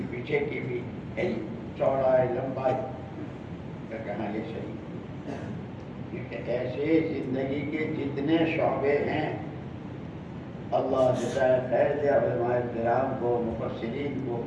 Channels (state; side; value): identical; both; correlation 1.00